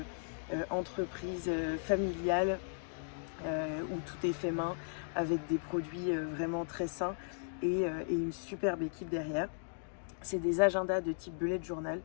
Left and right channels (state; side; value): silent; right; digital silence